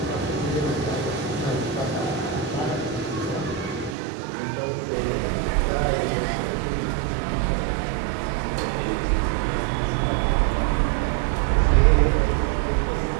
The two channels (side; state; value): left; drops out; at 4.0 s